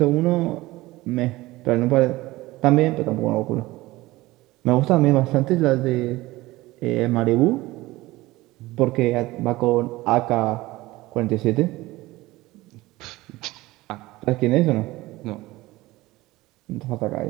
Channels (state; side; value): quieter; left; 19.0 dB